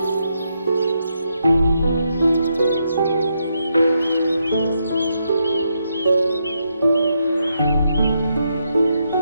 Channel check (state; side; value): inverted; both; correlation -0.81